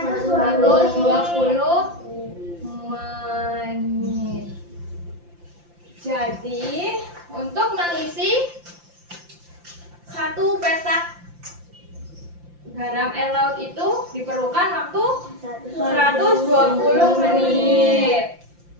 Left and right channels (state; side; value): late; left; 5.8 ms